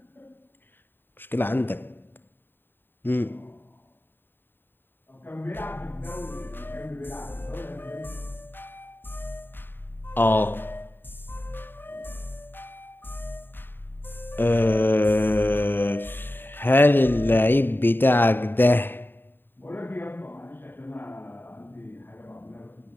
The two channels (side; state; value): right; late; 0.096 ms